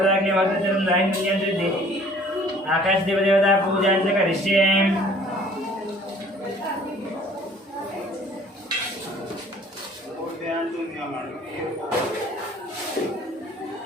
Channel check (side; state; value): both; normal; correlation 0.53